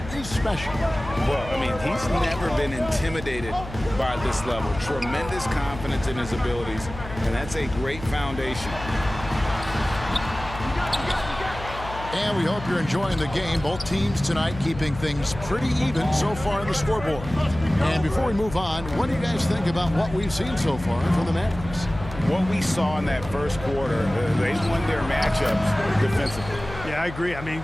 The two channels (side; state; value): left; noise; hum, 12 dB below the sound